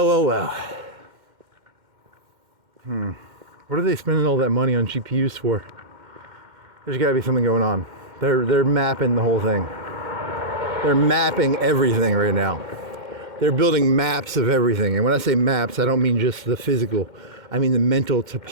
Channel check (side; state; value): left; late; 2.1 ms